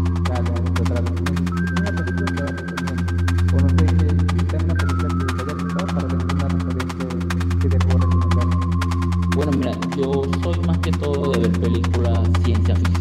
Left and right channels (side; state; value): both; identical; correlation 1.00